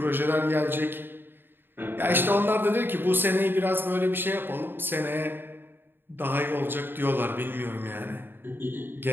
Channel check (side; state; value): left; late; 0.099 ms